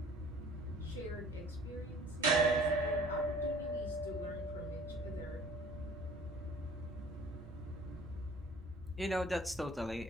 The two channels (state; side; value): normal; both; correlation 0.51